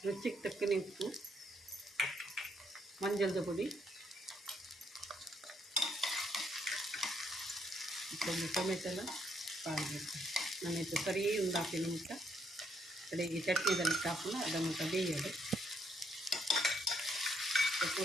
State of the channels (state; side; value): normal; both; correlation 0.72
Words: ರುಚಿಗೆ ತಕ್ಕನೆ ಉಪ್ಪು ಮಂಜಳದ ಪುಡಿ ಒಂದು ಟೊಮೆಟೊ ಎಲ್ಲ ಪಾಡಬೇಕು ನಾನೈತೆ ಸರಿ ಒಂದು ಹಾಕಿನ ಮುಟ್ಟ ಕಡೆಗೆ ಚಟ್ನಿದಲ್ಲಿ ಕಾಪಲ್ಲ ಅದ ಮುಟ್ಟ ಬೇಯೋದು